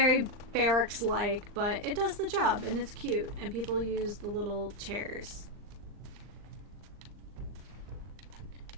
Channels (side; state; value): left; late; 39 ms